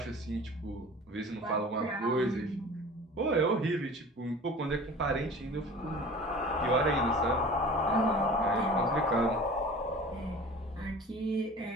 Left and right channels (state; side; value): normal; both; correlation 0.41